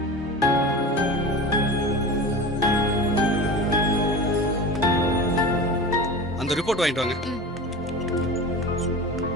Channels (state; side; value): normal; both; correlation 0.31